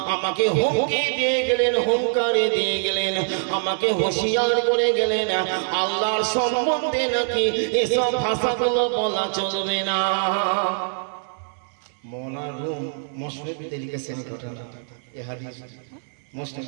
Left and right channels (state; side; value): silent; left; 63 dB below the other